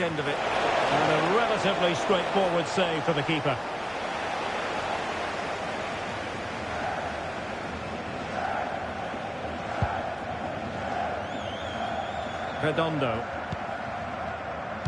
end of it. And a relatively straightforward save for the keeper. Redondo.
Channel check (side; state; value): both; identical; correlation 1.00